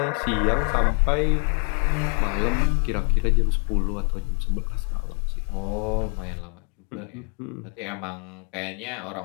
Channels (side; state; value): right; quieter; 38.1 dB